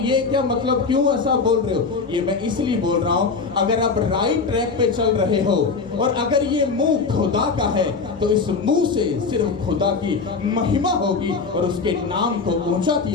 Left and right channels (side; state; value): right; quieter; 4.7 dB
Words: ये क्या मतलब, क्यों ऐसा बोल रहे हो? ये मैं इसलिए बोल रहा हूं, अगर आप राइट ट्रैक पे चल रहे हो और अगर ये मुंह खुदा का है तो इस मुंह से सिर्फ खुदा की महिमा होगी और उसके नाम को ऊंचा